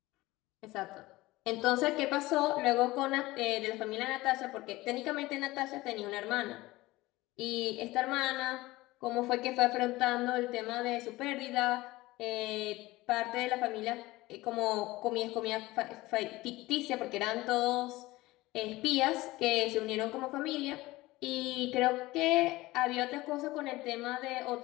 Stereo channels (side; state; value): right; quieter; 19.3 dB